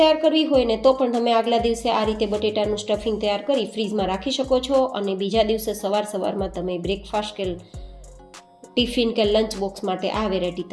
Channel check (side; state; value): both; identical; correlation 1.00